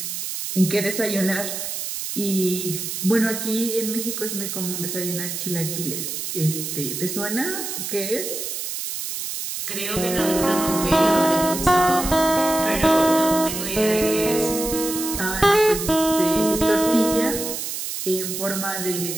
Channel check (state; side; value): noise; right; hiss, 5 dB below the sound